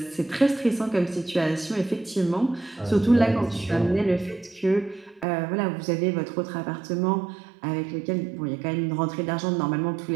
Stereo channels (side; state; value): left; drops out; at 5.2 s